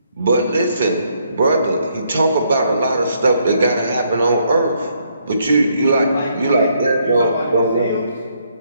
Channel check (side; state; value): both; inverted; correlation -0.72